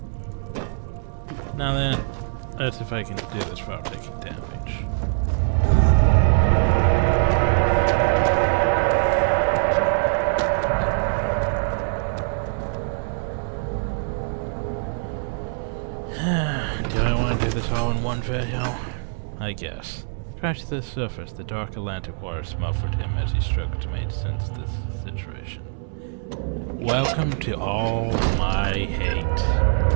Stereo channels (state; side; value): silent; left; 63 dB below the other